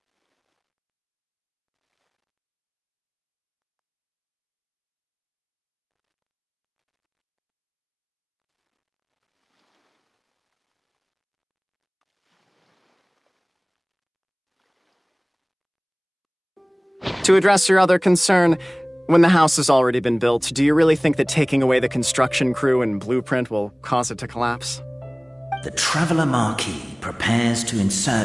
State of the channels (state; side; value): identical; both; correlation 1.00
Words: To address your other concern, when the house has already been built, do you really think that taking away the construction crew and blueprint will cause it to collapse? The Traveler Marquis prepares to